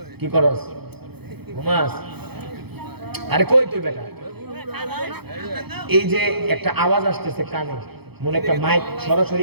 কি করস? ঘুমাস? আরে কই তুই বেটা? এই যে একটা আওয়াজ আসতেছে কানে, মনে একটা মাইক সরাসরি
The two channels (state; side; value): late; left; 0.97 ms